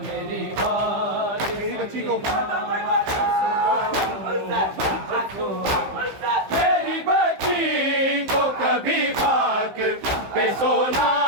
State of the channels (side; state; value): left; late; 15 ms